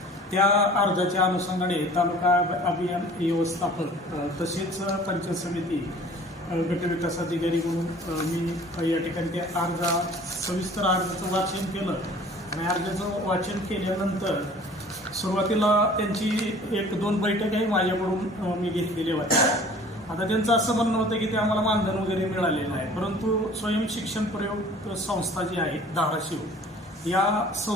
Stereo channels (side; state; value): both; normal; correlation 0.48